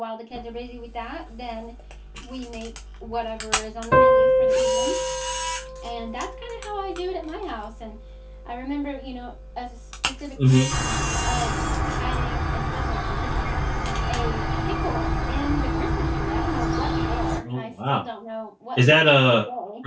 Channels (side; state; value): both; identical; correlation 1.00